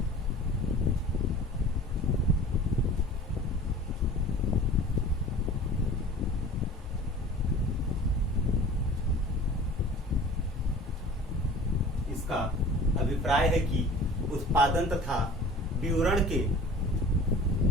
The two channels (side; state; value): both; normal; correlation 0.43